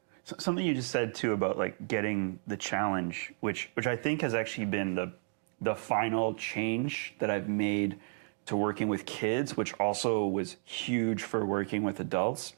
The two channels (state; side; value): silent; left; 56 dB below the other